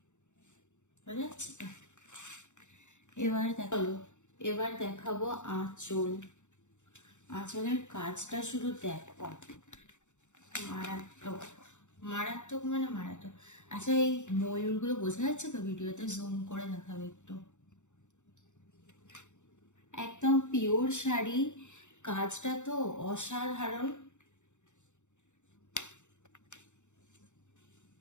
বোঝা যাচ্ছে তো। এবার দেখাবো আঁচল। আঁচলের কাজটা শুধু দেখো, মারাত্মক, মারাত্মক মানে মারাত্মক। আচ্ছা এই ময়ূরগুলো বোঝা যাচ্ছে তো? ভিডিওতে জুম করে দেখাবে একটু। একদম পিওর শাড়ি, কাজটা তো অসাধারণ।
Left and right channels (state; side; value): late; right; 0.84 ms